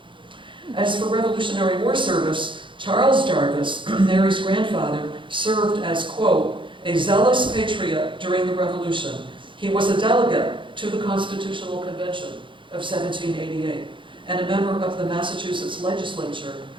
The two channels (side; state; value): left; late; 0.24 ms